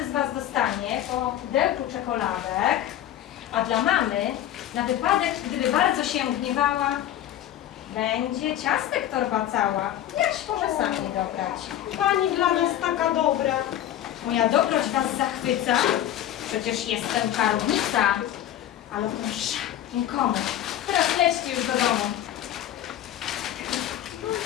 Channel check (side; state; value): right; quieter; 12.0 dB